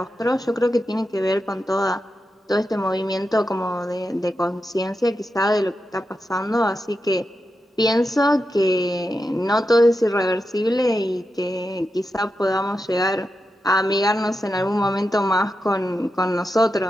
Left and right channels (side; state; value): both; normal; correlation 0.88